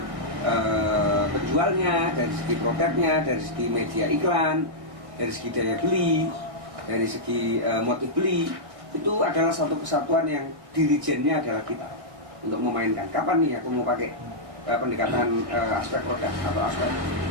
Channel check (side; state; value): left; late; 1.6 ms